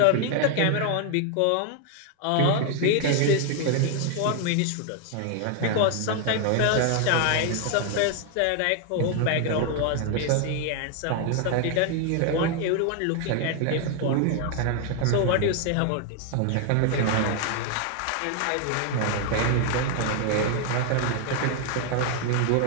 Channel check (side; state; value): both; different; correlation 0.00